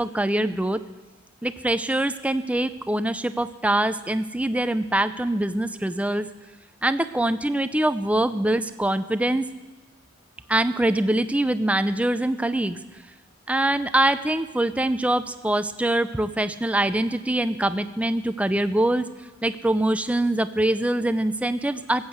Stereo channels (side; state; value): both; normal; correlation 0.85